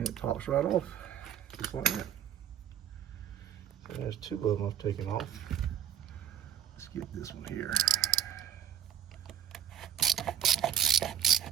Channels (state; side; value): quieter; left; 9.8 dB